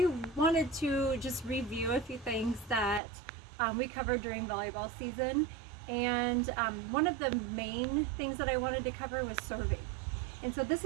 wanted to just review a few things that we covered during volleyball season. And one of the main things that I wanted to cover was serving. And so this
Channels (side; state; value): left; drops out; at 3.0 s